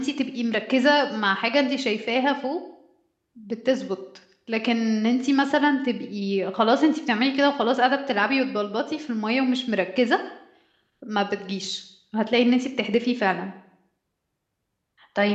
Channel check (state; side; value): identical; both; correlation 1.00